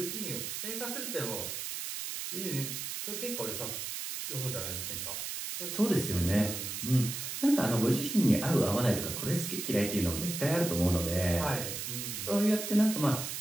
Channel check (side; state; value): right; noise; hiss, 5 dB below the sound